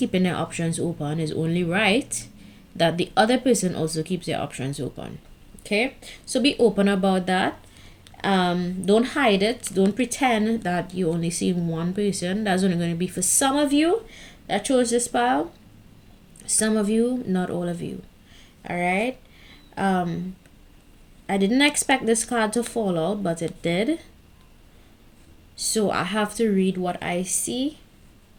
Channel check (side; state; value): both; identical; correlation 1.00